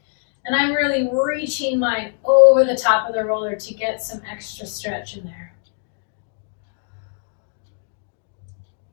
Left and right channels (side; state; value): right; silent; digital silence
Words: And I'm really reaching mine over the top of the roller to get some extra stretch in there.